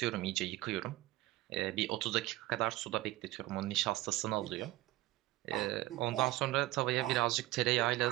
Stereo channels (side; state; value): left; quieter; 17.3 dB